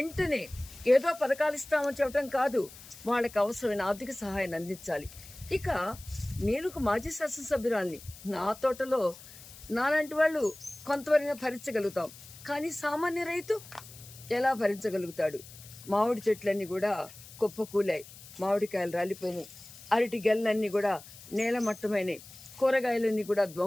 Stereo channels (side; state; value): left; noise; hiss, 18 dB below the sound